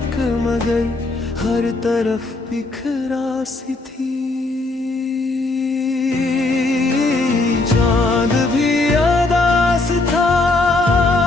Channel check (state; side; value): quieter; right; 3.1 dB